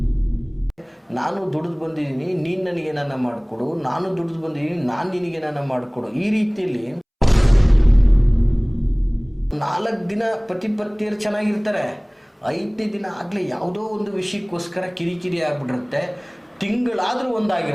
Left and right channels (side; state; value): both; identical; correlation 1.00